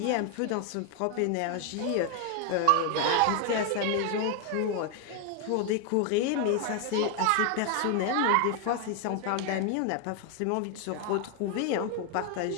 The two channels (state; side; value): different; both; correlation 0.01